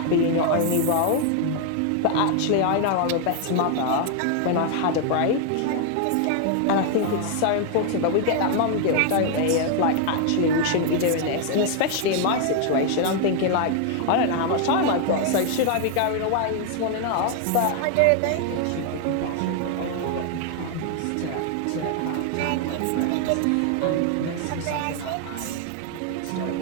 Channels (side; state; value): both; different; correlation 0.00